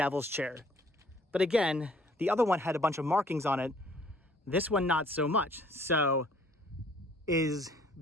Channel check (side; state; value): both; normal; correlation 0.58